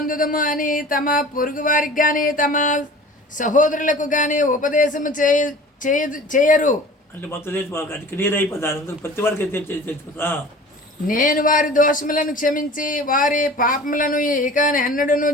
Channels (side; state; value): both; normal; correlation 0.43